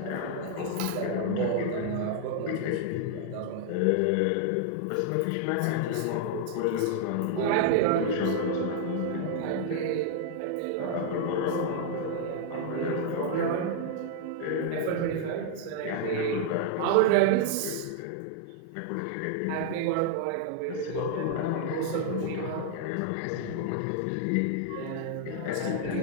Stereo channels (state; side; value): different; both; correlation 0.00